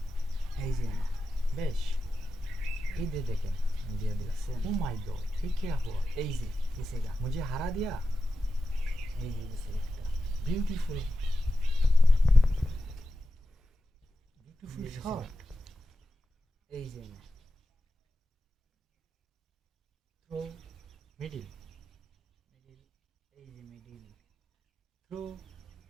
এই যে बेश इधर देखें दिया दिया। ओ माय गॉड ये क्या हुआ, এই যে দিছেগা मुझे हरा दिया। এই যে দিছে একটা ब्यूटीफुल ब्यूटीफुल शॉट এই যে थ्रो मिडिल এই যে মিডিল थ्रो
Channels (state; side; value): normal; both; correlation 0.91